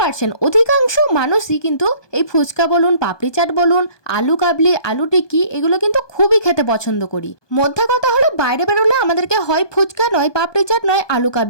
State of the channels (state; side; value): late; right; 1.2 ms